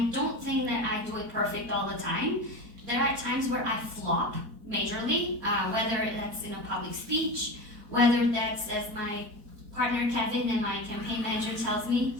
don't think that I do it perfect all the time. There are times where I flop majorly, whether that's in a public speech, whether that's as my partner Kevin and my campaign manager tells me,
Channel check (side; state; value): left; late; 4.4 ms